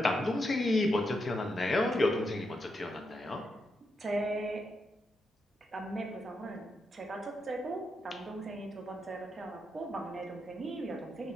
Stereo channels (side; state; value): both; normal; correlation 0.83